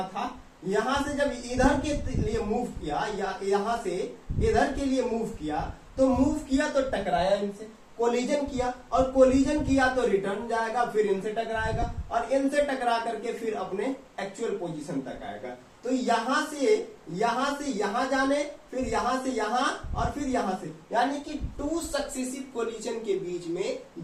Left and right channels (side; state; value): both; identical; correlation 1.00